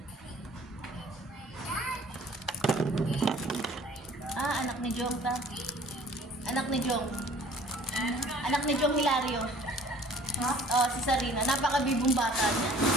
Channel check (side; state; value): both; normal; correlation 0.52